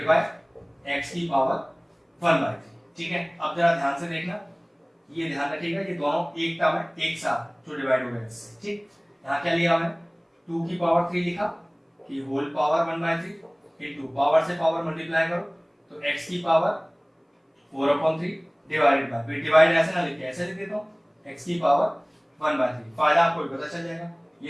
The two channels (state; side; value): identical; both; correlation 1.00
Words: बाय x की पावर 1/3। ठीक है अब जरा ध्यान से देखना ये ध्यान रखिएगा ये दोनों एक टर्म है एक साथ जो डिवाइड हो गए इससे। ठीक यहाँ क्या लिया मैंने 2 की पावर 3 लिखा कि होल पावर 1/3 इनटू पावर से पावर मल्टीप्लाई करो तो x की पावर 4/3 डिवाइडेड बाय डिवाइड ऐसे ना लिखे ऐसे लिख देता हूँ x की पावर 1/3। फायदा आपको पता चल जाएगा